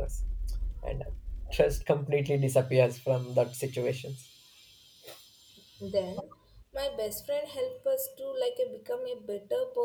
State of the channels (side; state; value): both; identical; correlation 1.00